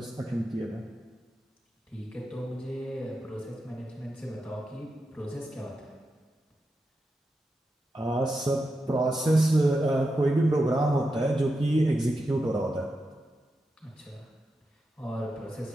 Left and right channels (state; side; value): normal; both; correlation 0.88